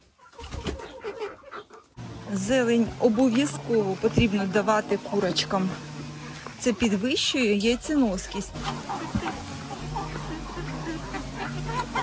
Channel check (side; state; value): both; identical; correlation 1.00